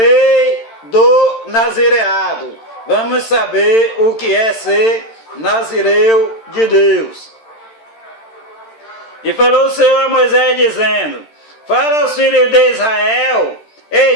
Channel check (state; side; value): late; right; 13 ms